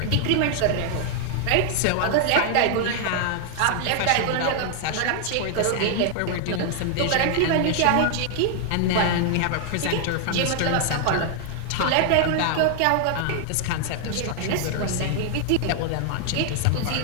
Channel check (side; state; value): both; different; correlation 0.00